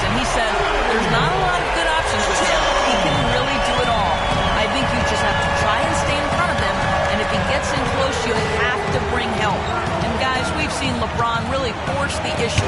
And he said, there's not a lot of good options with him. He can really do it all. I think you just have to try and stay in front of him. And if he gets in close, you have to bring help. And guys, we've seen LeBron really force the issue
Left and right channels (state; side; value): identical; both; correlation 1.00